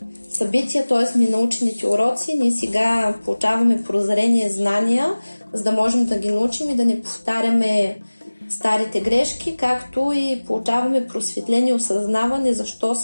събития, т.е. ненаучените уроци. Ние сега получаваме прозрение, знания, за да можем да ги научим и да не повтаряме старите грешки, както и получаваме просветление, осъзнаване защо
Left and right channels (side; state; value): both; inverted; correlation -1.00